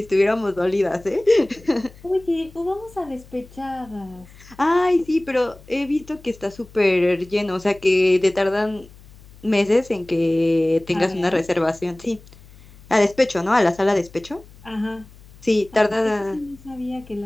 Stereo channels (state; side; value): noise; left; hum, 23 dB below the sound